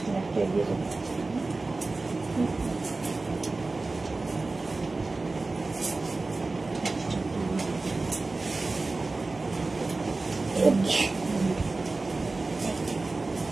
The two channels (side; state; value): left; quieter; 3.4 dB